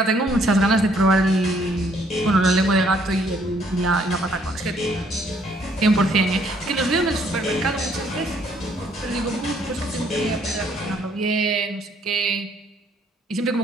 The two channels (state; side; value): normal; both; correlation 0.66